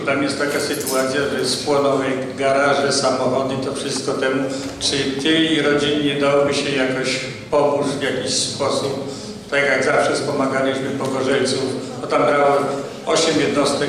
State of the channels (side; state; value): both; identical; correlation 1.00